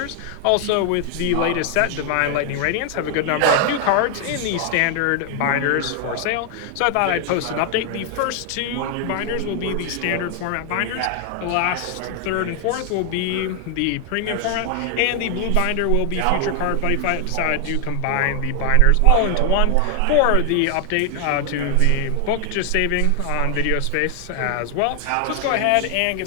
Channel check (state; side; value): different; both; correlation 0.00